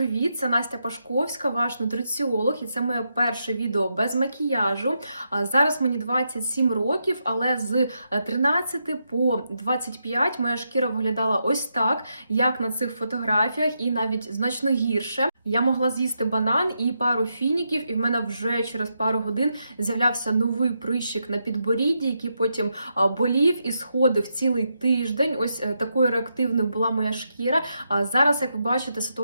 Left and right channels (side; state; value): both; inverted; correlation -0.83